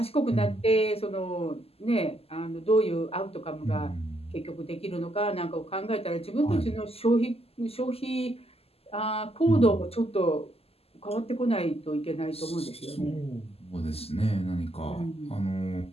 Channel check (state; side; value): late; right; 0.29 ms